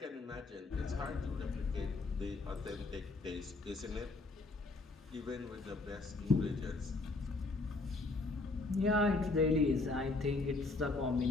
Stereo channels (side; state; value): right; quieter; 3.4 dB